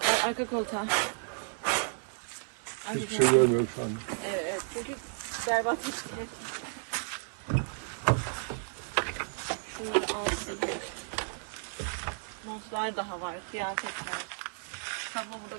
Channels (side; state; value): left; silent; 56 dB below the other